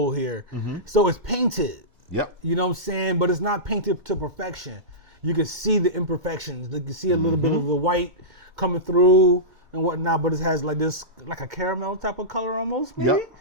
here. Mm-hmm. So it's painted. Yep. You know what I'm saying? But it's not painted to perfection. You can see the imperfections. You can see a little bit of the white coming through and whatnot, but it has like this, like a caramel type of color almost, maybe? Yep.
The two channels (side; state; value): left; late; 2.1 ms